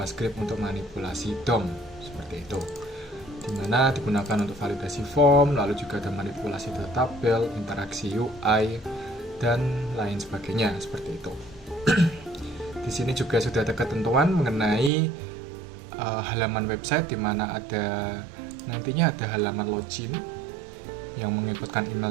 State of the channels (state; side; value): drops out; left; at 14.9 s